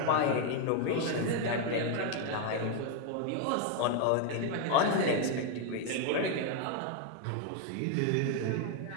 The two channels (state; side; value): different; both; correlation 0.01